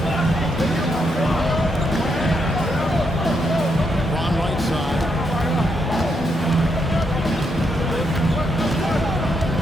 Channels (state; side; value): normal; both; correlation 0.79